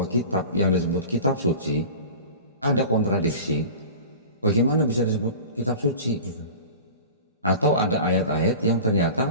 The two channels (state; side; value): inverted; both; correlation -0.37